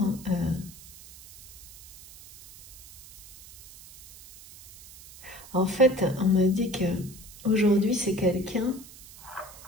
en fait, on me dit que aujourd'hui c'est quelqu'un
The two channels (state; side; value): noise; right; hiss, 19 dB below the sound